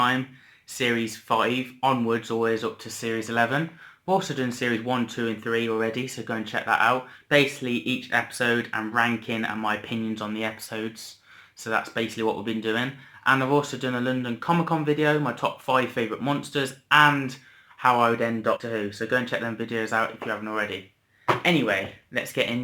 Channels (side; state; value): both; identical; correlation 1.00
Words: Series 5 onwards, always up to Series 11. We've also done Series 1, 2 and 3 already, so go and check that out. Basically, each episode and ranking and my opinions on the episodes. So that's basically what we've been doing. And I've also done a London Comic Con video, my top 5 favourite monsters, and how I would end Doctor Who. So go and check them videos out if you haven't already. Anyway, let's get